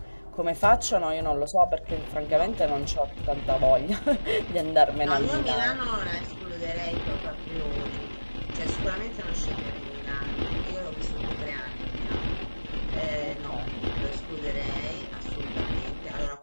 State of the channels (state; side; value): inverted; both; correlation -1.00